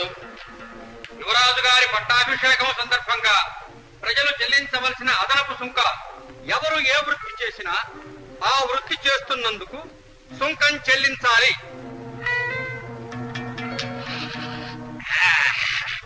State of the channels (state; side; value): identical; both; correlation 1.00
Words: యువరాజు గారి పట్టాభిషేకం సందర్భంగా ప్రజలు చెల్లించవలసిన అదనపు సుంకాలు. ఎవరు ఏ వృత్తి చేసినా ఆ వృత్తి చేస్తున్నందుకు సుంకం చెల్లించాలి.